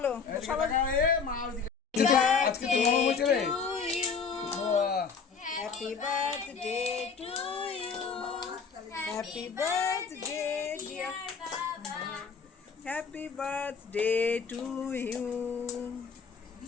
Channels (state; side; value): quieter; right; 5.7 dB